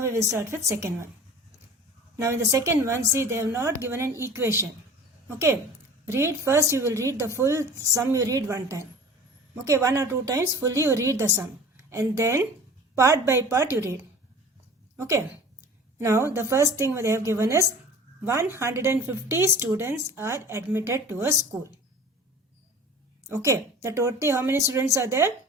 we will start with second one. Now in the second one, see they have not given an equation. Okay. Read first, you will read the full sum, you read one time. Okay, one or two times fully you read the sum. And then part by part you read. Okay. Now the first thing they have given is 150 students are admitted to a school. Okay, the total how many students are there?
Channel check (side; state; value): both; normal; correlation 0.41